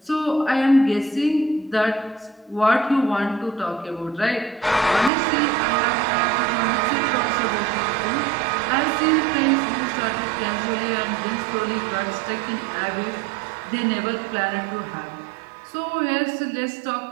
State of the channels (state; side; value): drops out; left; at 5.1 s